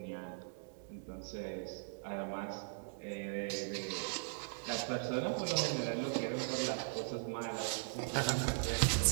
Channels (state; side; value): silent; left; digital silence